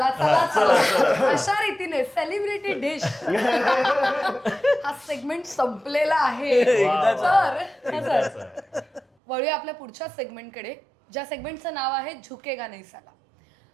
चला चला. अशा रीतीने सेलिब्रिटी डिश हा सेगमेंट संपलेला आहे. तर वळूया आपल्या पुढच्या सेगमेंटकडे, ज्या सेगमेंटचं नाव आहे झुकेगा नहीं साला.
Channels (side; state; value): left; drops out; at 9.1 s